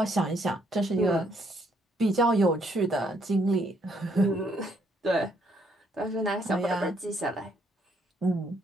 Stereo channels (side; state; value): both; normal; correlation 0.70